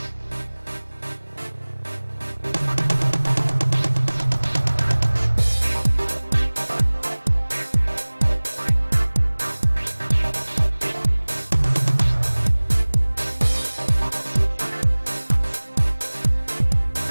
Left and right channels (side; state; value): both; inverted; correlation -1.00